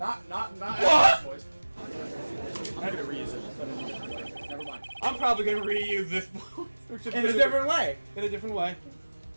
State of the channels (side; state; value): both; inverted; correlation -1.00